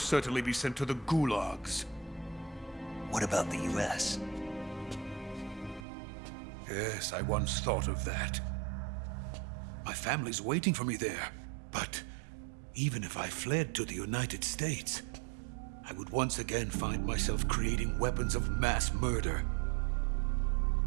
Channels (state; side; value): drops out; left; at 5.9 s